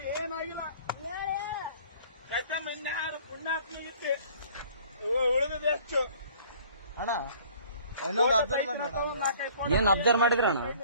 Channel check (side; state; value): both; inverted; correlation -0.53